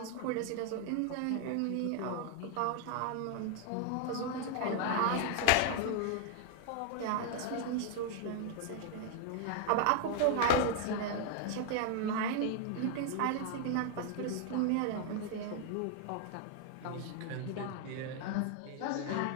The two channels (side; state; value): both; different; correlation 0.00